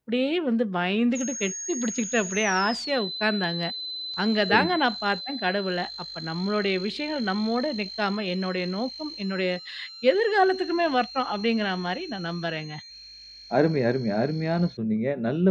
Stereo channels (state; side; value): identical; both; correlation 1.00